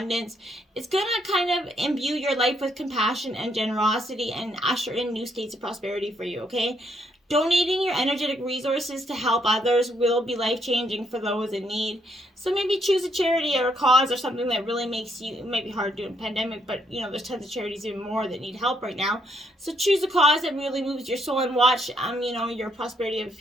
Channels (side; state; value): both; normal; correlation 0.72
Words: It's going to kind of imbue your life with compassion and generosity and usher in new states of prosperity for you, okay? Donating your energetic resources to help others will be life-changing for those in need. So maybe choose a charity or a cause or something that really makes you, it might be hard to do in a pandemic, but you know, there's tons of charities even more that need help right now. So choose a cause that really moves your soul and watch, you know, your prosperity of